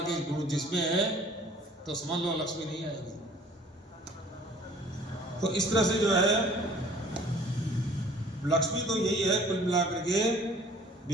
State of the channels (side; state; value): both; normal; correlation 0.52